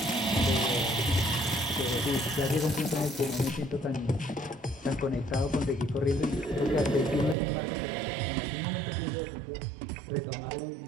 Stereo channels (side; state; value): left; drops out; at 7.4 s